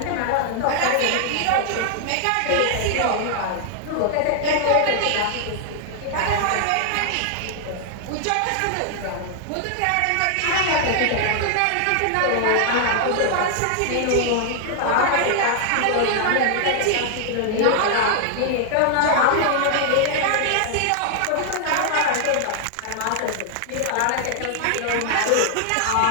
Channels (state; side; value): different; both; correlation 0.00